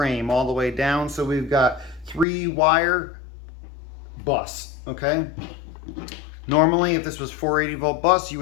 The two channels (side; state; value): right; drops out; at 2.2 s